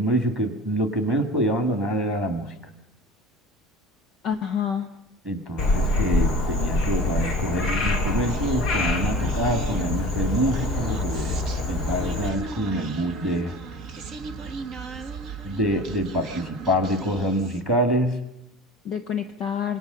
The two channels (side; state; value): both; normal; correlation 0.39